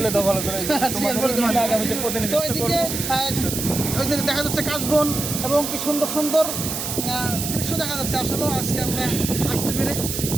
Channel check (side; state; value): right; noise; hiss, 4 dB below the sound